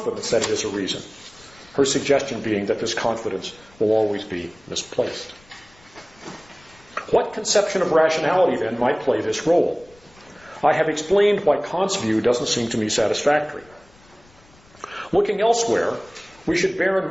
that it is a reason. Her suggestion being that this confidence will always be misplaced. What conception of rationality, then, might play this role? I have explained why Kant's view doesn't seem to me satisfactory. Looking elsewhere, we should bear in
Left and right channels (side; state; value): left; noise; rumble, 28 dB below the sound